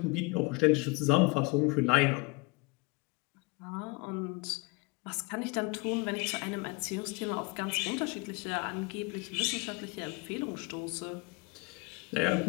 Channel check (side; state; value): right; quieter; 26.9 dB